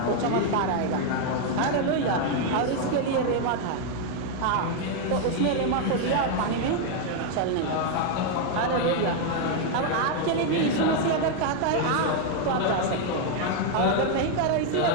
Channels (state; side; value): different; both; correlation 0.00